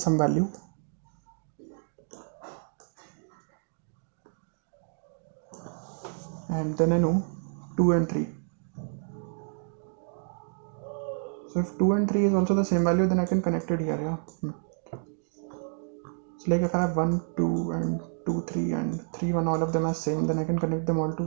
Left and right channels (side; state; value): left; silent; 58 dB below the other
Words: value, and then I know 2 and 3. So if 2 and 3 is also the same value, then I can connect it here, yeah. So like if I have 1, 2 and 2, 3 and 3, 1, all of them are same, then I can connect them all